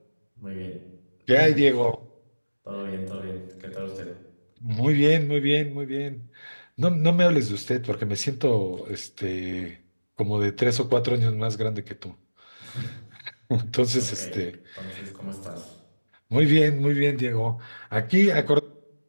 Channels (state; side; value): inverted; both; correlation -1.00